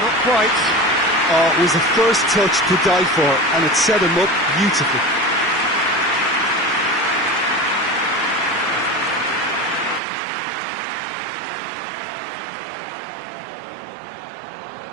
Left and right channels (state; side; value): drops out; left; at 10.0 s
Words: quite. Oh, it was the first touch to die for, and it set him up beautifully.